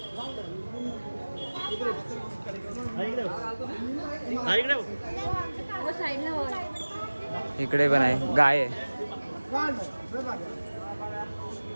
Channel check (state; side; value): inverted; both; correlation -1.00